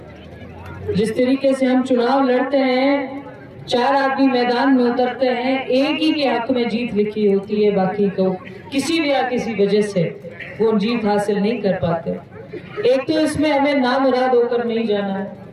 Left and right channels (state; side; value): identical; both; correlation 1.00